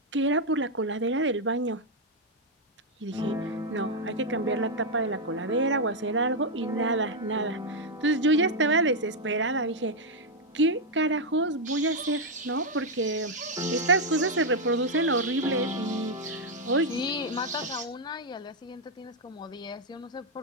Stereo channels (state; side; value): normal; both; correlation 0.00